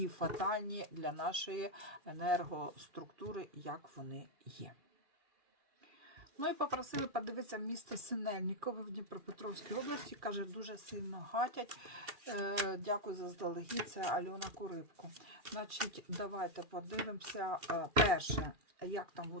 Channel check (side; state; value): left; late; 2.4 ms